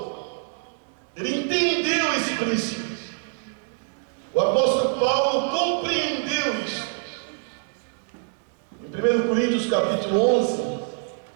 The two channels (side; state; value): left; silent; digital silence